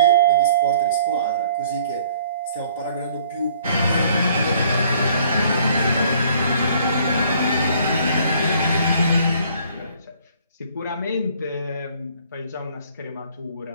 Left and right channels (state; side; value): inverted; both; correlation -0.59